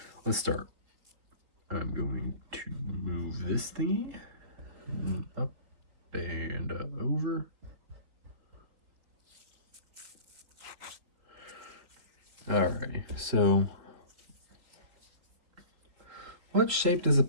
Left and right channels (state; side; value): late; left; 4.0 ms